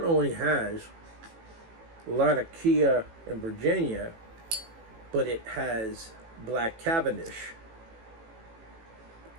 only has Latakia in Virginia, but it has Black Cavendish.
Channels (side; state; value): left; late; 18 ms